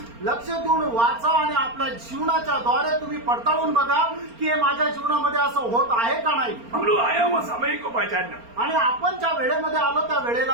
लक्ष देऊन वाचा आणि आपल्या जीवनाच्या द्वारे तुम्ही पडताळून बघा की हे माझ्या जीवनामध्ये असं होत आहे का नाही. हम लोग आए वो समय को पहचानना आणि आपण ज्या वेळेमध्ये आलो त्या वेळेला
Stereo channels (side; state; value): left; late; 4.3 ms